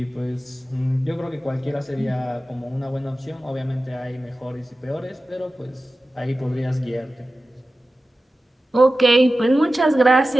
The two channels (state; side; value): normal; both; correlation 0.94